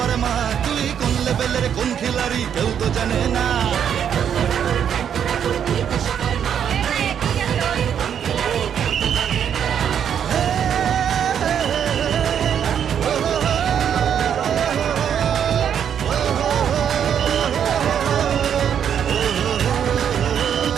মা, তুই কোন লেভেলের কোন খিলাড়ি কেউ তো জানে না।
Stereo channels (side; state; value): left; quieter; 8.6 dB